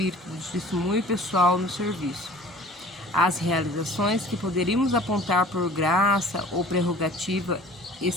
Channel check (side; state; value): both; normal; correlation 0.47